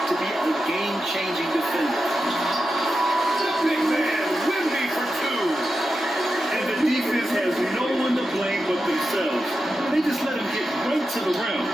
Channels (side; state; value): both; normal; correlation 0.90